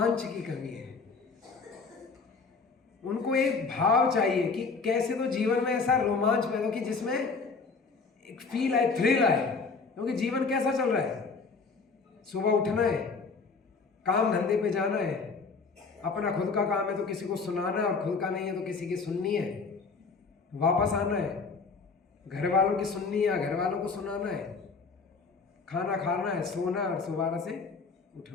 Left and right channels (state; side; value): quieter; right; 4.6 dB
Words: की कमी है। उनको एक भाव चाहिए कि कैसे तो जीवन में ऐसा रोमांच पैदा हो कि जिसमें एक फील आए, थ्रिल आए। क्योंकि जीवन कैसा चल रहा है? सुबह उठना है, काम धंधे पे जाना है, अपना खुद का काम है तो किसी को सुनाना है, और खुद का नहीं है तो किसी की सुननी है, वापस आना है, घर वालों की सुननी है, घर वालों को सुनाना है, खाना खाना है, सोना और दोबारा से